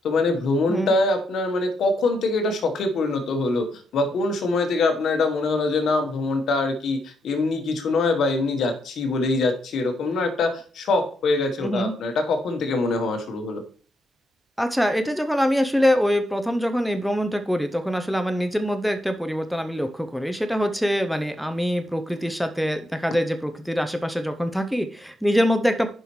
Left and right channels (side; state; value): both; normal; correlation 0.81